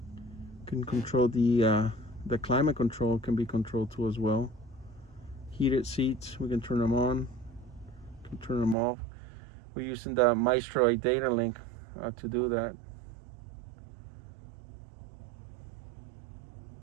Can control the climate control can be controlled too as well. Heated seats, we can turn them on, can turn them off. We're using the Maestro data link to do that.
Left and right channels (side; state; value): left; drops out; at 8.8 s